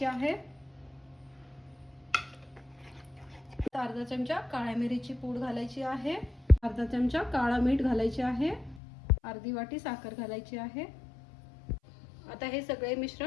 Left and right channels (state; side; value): drops out; right; at 8.8 s